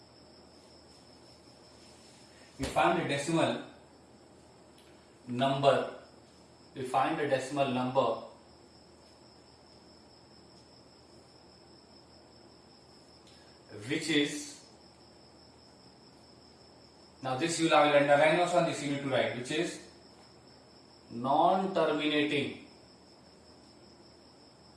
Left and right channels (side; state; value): both; identical; correlation 1.00